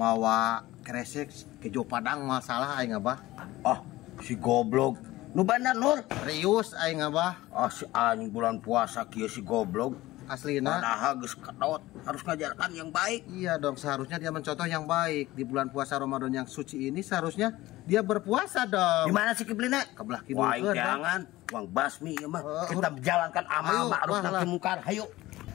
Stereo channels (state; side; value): quieter; right; 17.6 dB